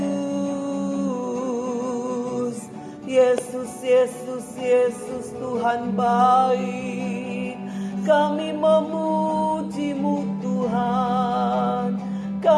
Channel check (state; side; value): identical; both; correlation 1.00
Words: Yesus, Yesus, Yesus, Tuhan baik. Kami memuji-Mu Tuhan,